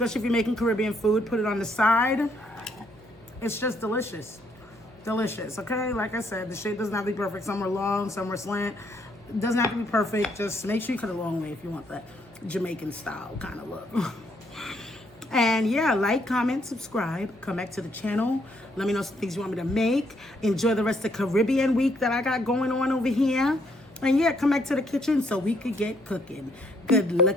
if you're making Caribbean food. Put it on the side. It's just delicious. Delicious, okay? Like I said, the shape doesn't have to be perfect. Some are long, some are slant. It doesn't have to be perfect. Just make sure you cut it a long way if you want that Jamaican style kind of look. And yeah, like, comment, subscribe. Come back to the channel. Let me know some things you want me to make. Enjoy the rest of Caribbean week that I got going on over here. And yeah, come back to the kitchen so we could get cooking. Good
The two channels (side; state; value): right; noise; hum, 26 dB below the sound